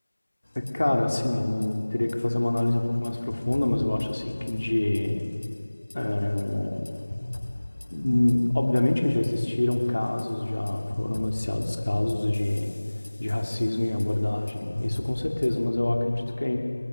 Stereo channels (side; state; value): both; inverted; correlation -1.00